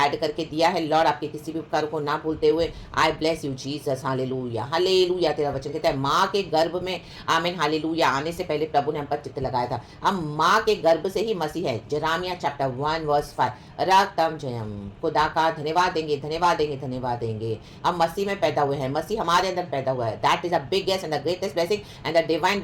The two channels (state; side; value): identical; both; correlation 1.00